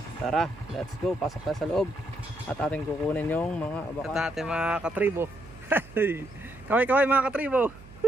Tara, let's go. Pasok tayo sa loob at ating kukunin yung mga abaka at ating mga katribo. Kaway-kaway mga katribo.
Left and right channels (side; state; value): right; noise; hum, 20 dB below the sound